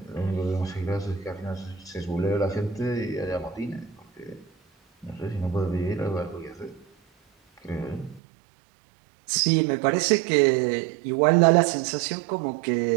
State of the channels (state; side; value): drops out; left; at 8.2 s